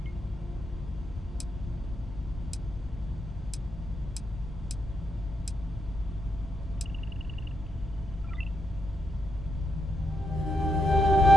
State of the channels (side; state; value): both; normal; correlation 0.81